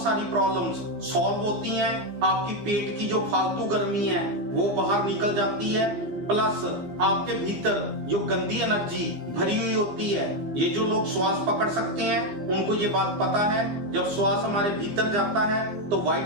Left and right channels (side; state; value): left; late; 15 ms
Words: सारी प्रॉब्लम्स सॉल्व होती हैं। आपकी पेट की जो फालतू गर्मी है वो बाहर निकल जाती है। प्लस आपके भीतर जो गंदी एनर्जी भरी हुई होती है, ये जो लोग श्वास पकड़ सकते हैं उनको ये बात पता है। जब श्वास हमारे भीतर जाता है तो